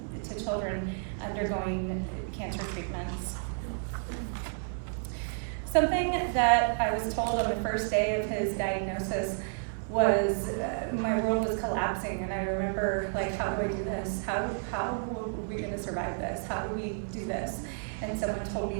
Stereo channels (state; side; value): silent; left; digital silence